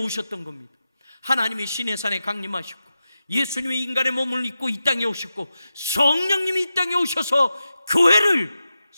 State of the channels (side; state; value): both; inverted; correlation -0.91